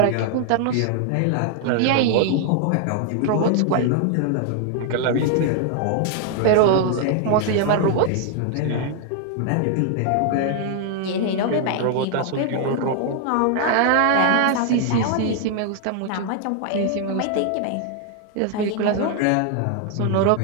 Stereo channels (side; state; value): both; different; correlation 0.00